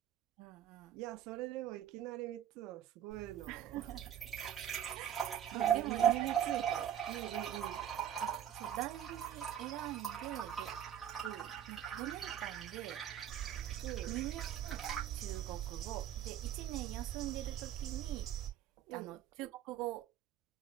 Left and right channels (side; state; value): left; quieter; 10.3 dB